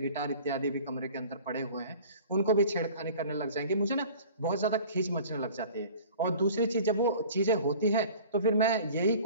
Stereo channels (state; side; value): inverted; both; correlation -0.45